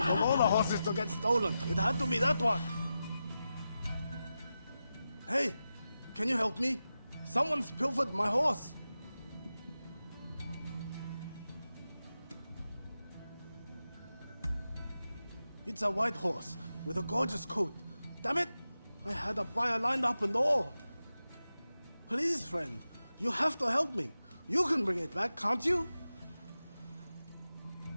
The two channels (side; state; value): both; inverted; correlation -0.91